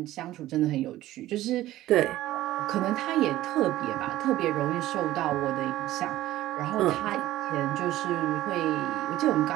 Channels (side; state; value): left; quieter; 15.2 dB